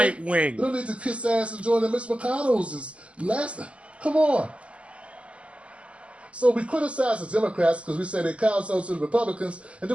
We don't need to kiss ass and join the Mitch McConnells. Come on. So we criticize the Democrats because we say they kowtow to the Republicans, and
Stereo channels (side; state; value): left; late; 0.059 ms